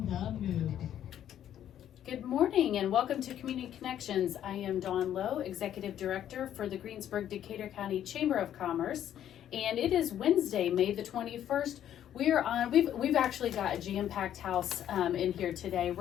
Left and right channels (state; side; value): quieter; right; 10.7 dB